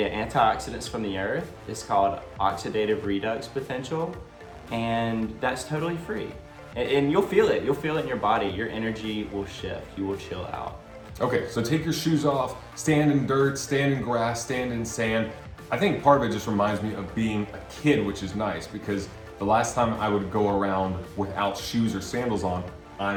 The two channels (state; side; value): identical; both; correlation 1.00